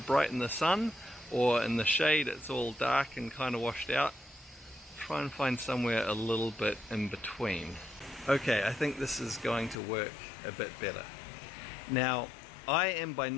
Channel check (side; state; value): right; drops out; at 9.8 s